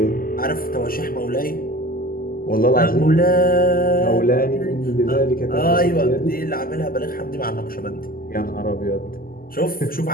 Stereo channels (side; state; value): right; late; 0.42 ms